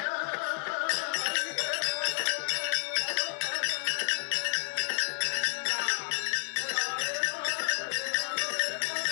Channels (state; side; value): silent; right; 57 dB below the other